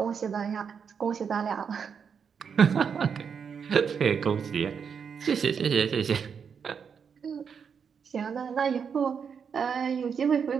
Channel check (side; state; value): left; quieter; 6.7 dB